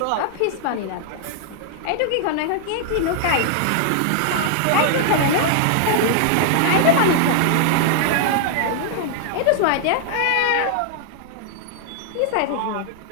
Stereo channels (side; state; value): both; different; correlation 0.00